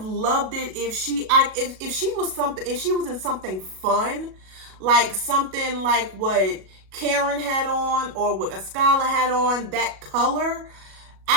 loved it if she was in something fun, like something like what Karen had on or what Ascala had on, that color.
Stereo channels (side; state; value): left; late; 37 ms